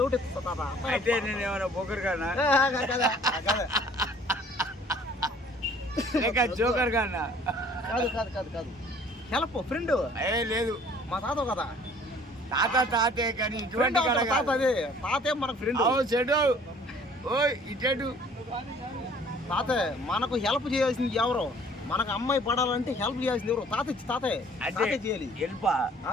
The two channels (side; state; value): both; normal; correlation 0.54